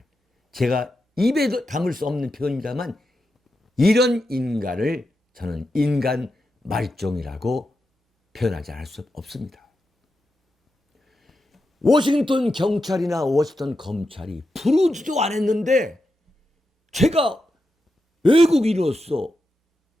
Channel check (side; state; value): both; normal; correlation 0.88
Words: 제가 입에도 담을 수 없는 표현입니다만 이런 인간을 저는 인간 말종이라고 표현하지 않을 수 없습니다. 워싱턴 경찰이나 워싱턴 검찰이 부르지도 않았는데 제가 외국인으로서